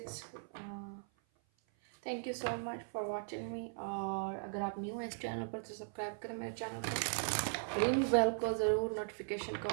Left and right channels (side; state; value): left; silent; 52 dB below the other